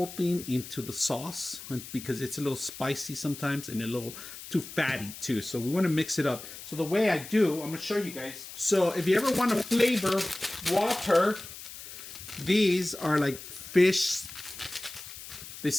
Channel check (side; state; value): left; noise; hiss, 13 dB below the sound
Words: thing into the sauce because it's a little spicy sometimes and a little too fatty too. So we want to mix it up. So the way I do, I'm gonna show you guys. So if you ever want to flavor water, these are like fish. They